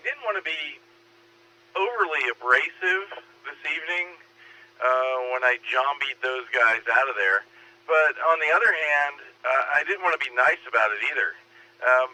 didn't want to be overly abrasive this evening when I zombied those guys out of there. But on the other hand, I didn't want to be nice about it either.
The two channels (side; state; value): both; identical; correlation 1.00